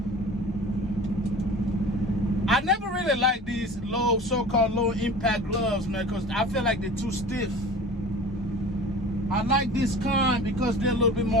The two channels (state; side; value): normal; both; correlation 0.39